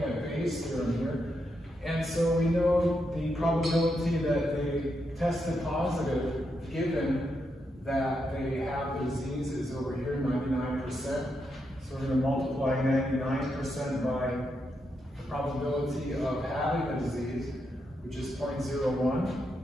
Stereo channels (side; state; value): both; normal; correlation 0.83